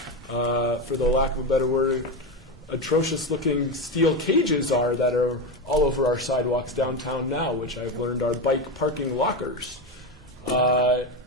for the lack of a better word, atrocious-looking steel cages are that are all over our sidewalks downtown now, which I've learned are bike parking lockers.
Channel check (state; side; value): normal; both; correlation 0.16